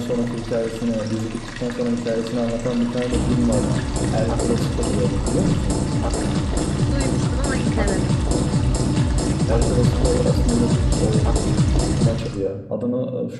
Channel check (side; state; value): both; identical; correlation 1.00